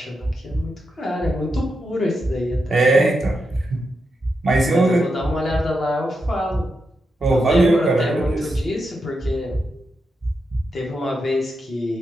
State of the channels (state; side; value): normal; both; correlation 0.86